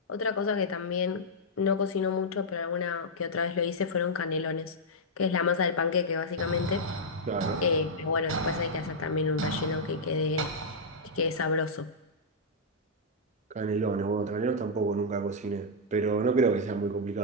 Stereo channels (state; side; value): normal; both; correlation -0.07